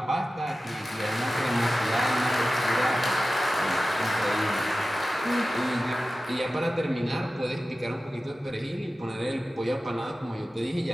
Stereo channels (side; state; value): both; normal; correlation 0.94